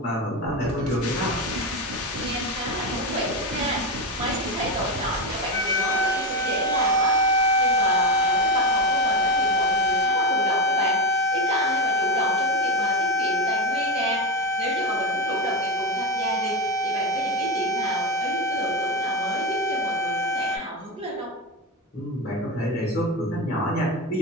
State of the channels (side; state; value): both; normal; correlation 0.14